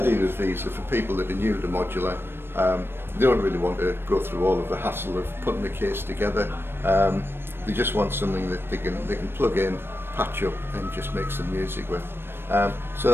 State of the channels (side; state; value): left; late; 0.11 ms